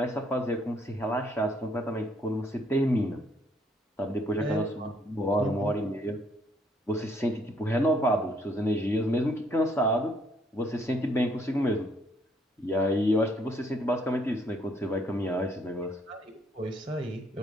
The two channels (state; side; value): normal; both; correlation 0.67